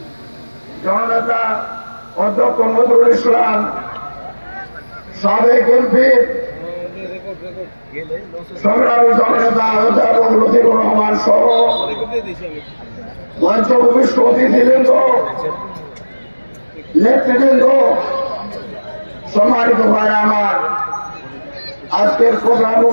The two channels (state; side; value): inverted; both; correlation -1.00